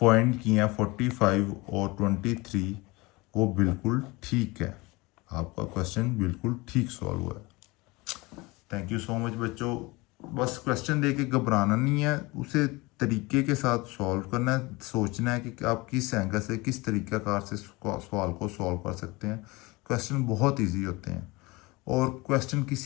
की हैं 45 और 23, वो बिल्कुल ठीक है। आपका क्वेश्चन बिल्कुल ठीक सॉल्व हुआ है। थैंक यू सो मच बच्चों। बस क्वेश्चन दे के घबराना नहीं है, उसे तरीके के साथ सॉल्व करना है, सोचना है कि आप किस एंगल से किस तरीक़ाकार से सवाल को सॉल्व कर सकते हैं। क्वेश्चन बहुत इजी होते हैं और क्वेश्चन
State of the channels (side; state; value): right; quieter; 23.5 dB